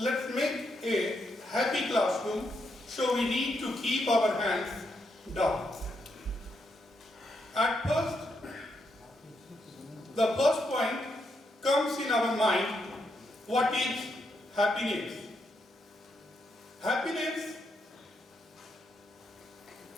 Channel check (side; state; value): both; normal; correlation 0.80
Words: make a happy classroom, so we need to keep our hands down. At first, the first point comes in our mind, what is happiness? Happiness